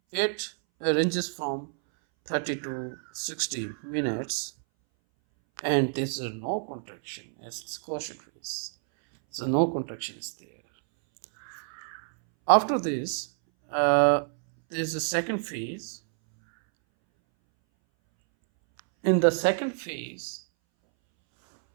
it ranges from 30 to 60 minutes, and there's no contraction as it's quiescent phase. So no contraction is there. After this, there's a second phase. In the second phase,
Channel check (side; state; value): left; silent; 59 dB below the other